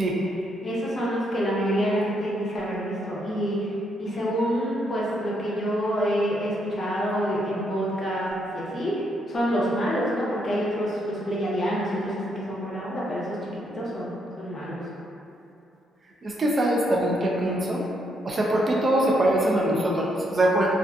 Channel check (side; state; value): both; normal; correlation 0.76